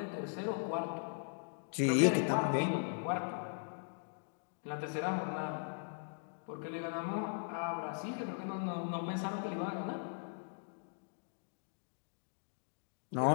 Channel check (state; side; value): silent; right; digital silence